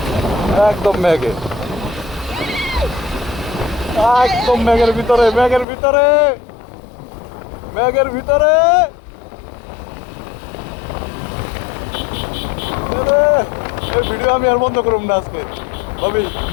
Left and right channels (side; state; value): right; drops out; at 5.7 s